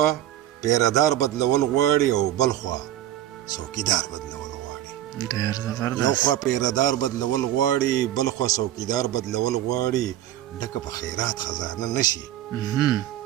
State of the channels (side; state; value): left; quieter; 12.5 dB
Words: پیردار بدلول غواړي او بل خوا څوکیدار بدلول غواړي. ډېر زبردست. یو خوا پیردار بدلول غواړي، بل خوا څوکیدار بدلول غواړي. ډکه په خیرات خزانه نشي،